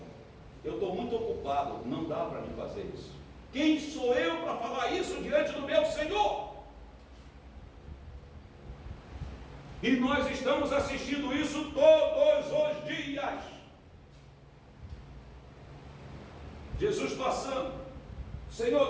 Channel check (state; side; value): identical; both; correlation 1.00